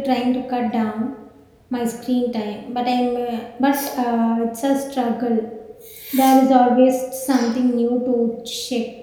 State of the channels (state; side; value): identical; both; correlation 1.00